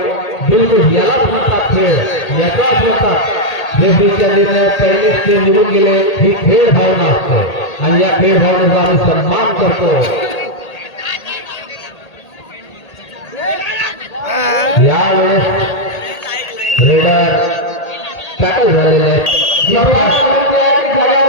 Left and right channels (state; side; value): late; right; 1.8 ms